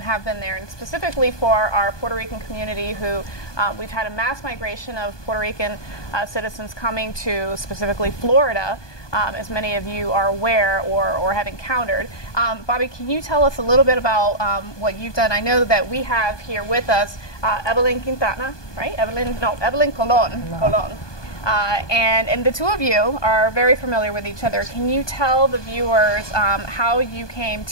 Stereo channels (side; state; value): right; late; 1.2 ms